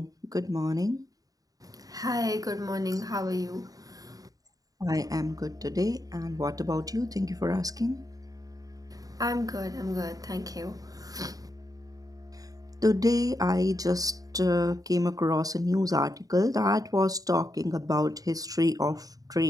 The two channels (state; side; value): late; left; 0.18 ms